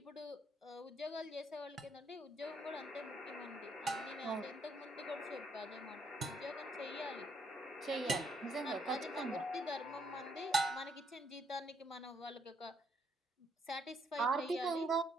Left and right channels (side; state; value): both; normal; correlation 0.72